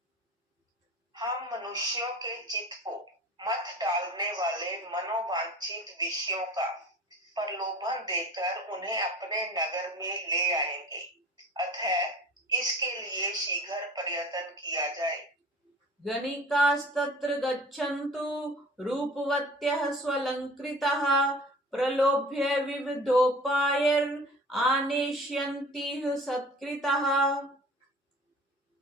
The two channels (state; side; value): normal; both; correlation 0.43